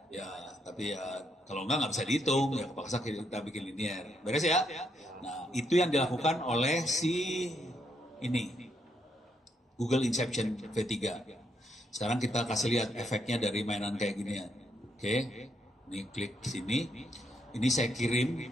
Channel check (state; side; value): normal; both; correlation 0.76